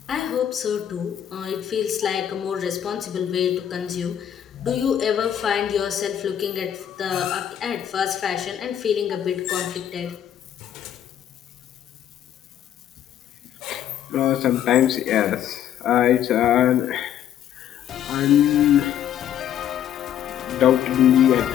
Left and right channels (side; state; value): right; quieter; 10.3 dB